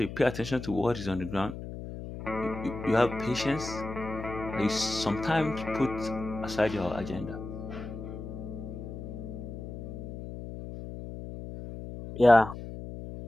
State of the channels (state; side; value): noise; left; hum, 9 dB below the sound